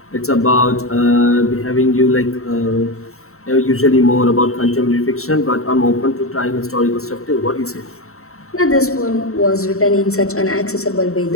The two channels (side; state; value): right; late; 0.63 ms